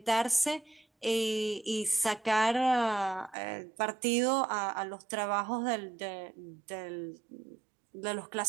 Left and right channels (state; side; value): drops out; left; at 3.4 s